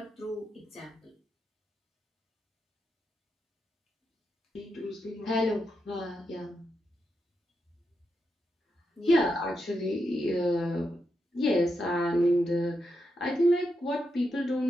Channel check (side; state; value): both; normal; correlation 0.85